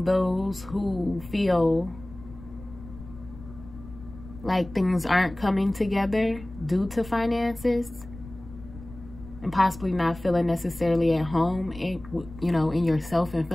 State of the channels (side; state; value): left; noise; rumble, 16 dB below the sound